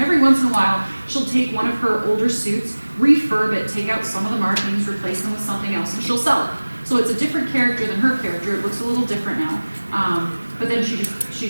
every once in a while, she'll take one of her older suits, refurb it, take out some of the markings, replace them with something else, and she'll sell it. So it's a different character than her character. It looks a little different now, but then she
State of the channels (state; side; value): inverted; both; correlation -1.00